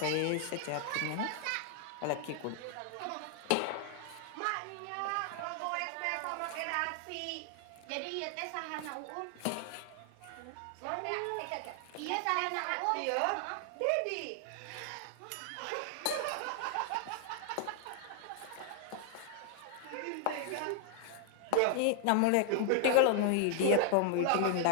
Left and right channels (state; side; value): different; both; correlation 0.00